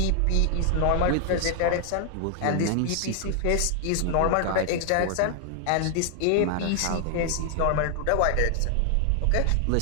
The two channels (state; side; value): different; both; correlation 0.00